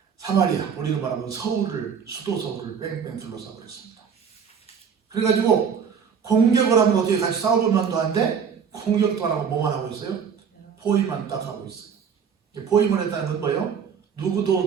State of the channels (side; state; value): left; quieter; 6.9 dB